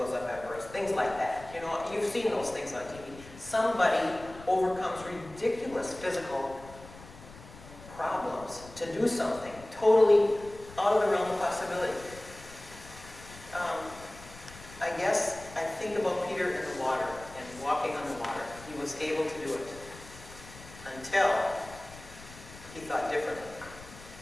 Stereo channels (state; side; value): noise; left; rumble, 18 dB below the sound